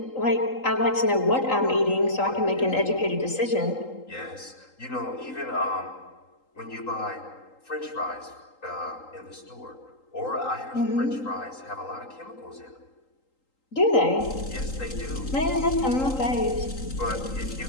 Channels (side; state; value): right; late; 3.8 ms